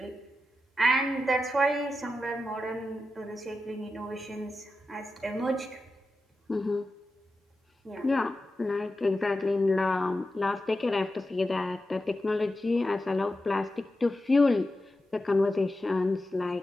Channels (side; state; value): both; normal; correlation 0.91